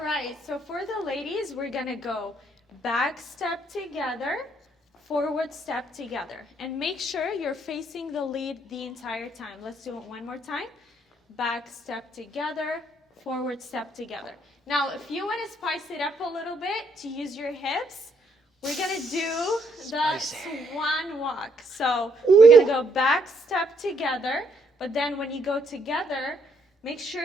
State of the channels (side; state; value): both; normal; correlation 0.71